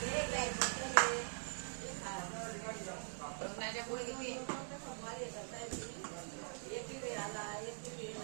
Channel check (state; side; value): silent; left; digital silence